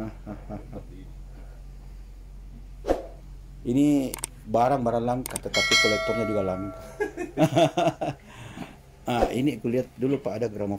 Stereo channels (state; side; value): identical; both; correlation 1.00